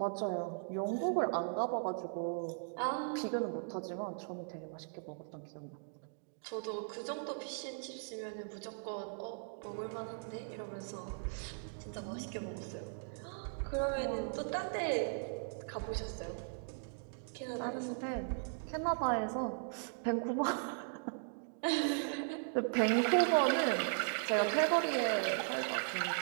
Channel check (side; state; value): left; silent; digital silence